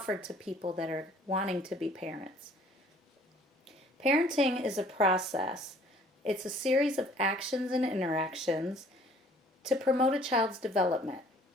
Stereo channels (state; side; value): normal; both; correlation 0.56